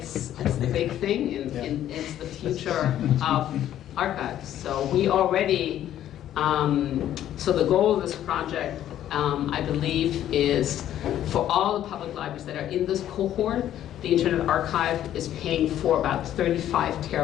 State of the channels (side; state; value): right; quieter; 11.7 dB